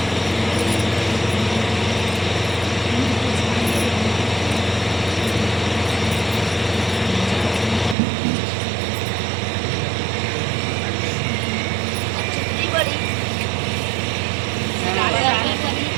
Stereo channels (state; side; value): drops out; left; at 8.0 s